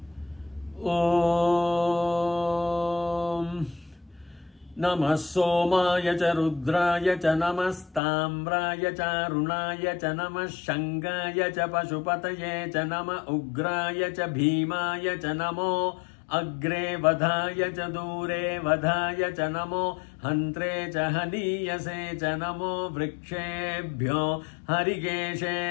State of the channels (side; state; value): right; drops out; at 8.0 s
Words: ஓம் நம சோமாய ச ருத்ராய ச நமஸ்தாம்ராய ச அருணாய ச நம சங்காய ச பசுபதயே ச நம உக்ராய ச பீமாய ச நமோ அக்ரே வதாய ச தூரே வதாய ச நமோ ஹந்த்ரே ச ஹனீயசே ச நமோ விருக்ஷேभ्यो